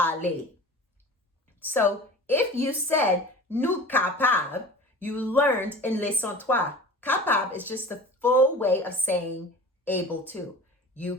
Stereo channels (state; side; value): normal; both; correlation 0.38